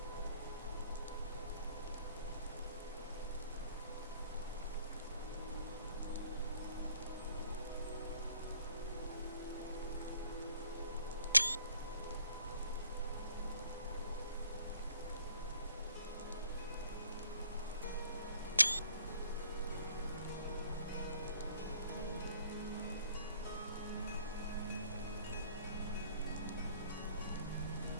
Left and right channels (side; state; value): both; inverted; correlation -0.61